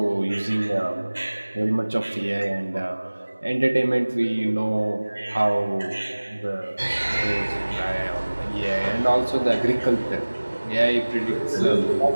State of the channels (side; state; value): both; inverted; correlation -1.00